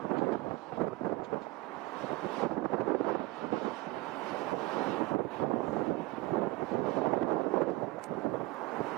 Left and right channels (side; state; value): left; quieter; 19.8 dB